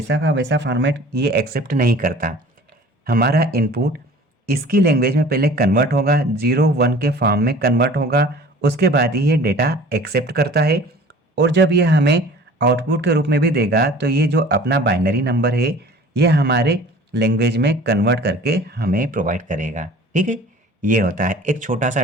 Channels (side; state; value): both; normal; correlation 0.46